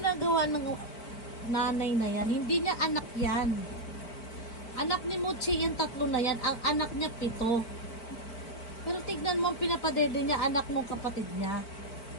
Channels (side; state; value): right; late; 4.6 ms